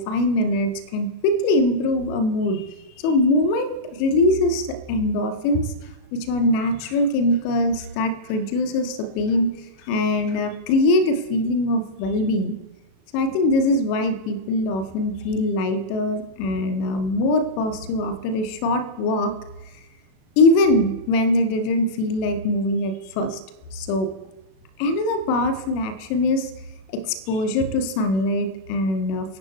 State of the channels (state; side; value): late; right; 37 ms